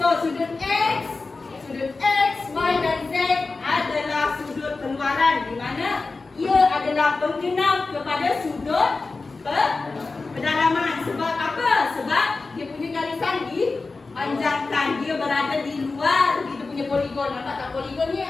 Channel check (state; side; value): quieter; right; 3.8 dB